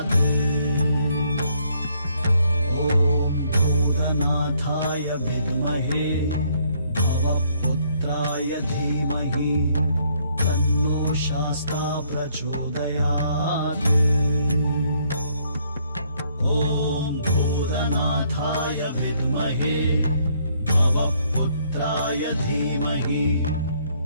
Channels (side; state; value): both; inverted; correlation -0.68